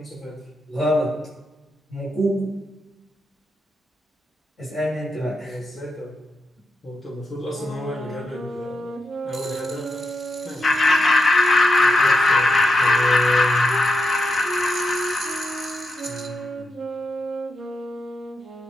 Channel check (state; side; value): normal; both; correlation 0.85